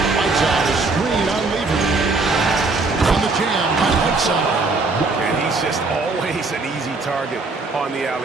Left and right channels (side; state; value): left; quieter; 3.7 dB